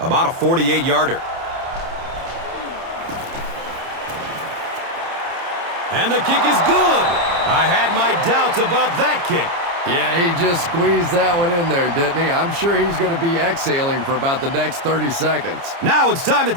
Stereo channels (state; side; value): late; left; 29 ms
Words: a 48-yarder. And the kick is good. I had my doubts about that kick. Yeah, he just squeezed that one in there, didn't he? I'm sure he's going to be exhaling for about the next 30 seconds. Now it's time to